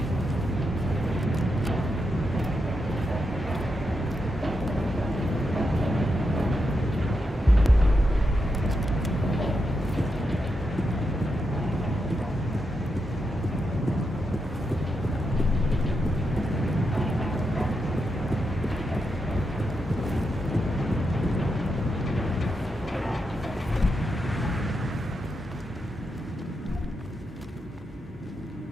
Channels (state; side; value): normal; both; correlation 0.85